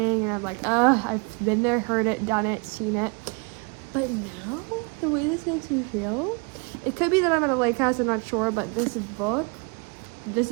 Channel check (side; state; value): left; quieter; 32.5 dB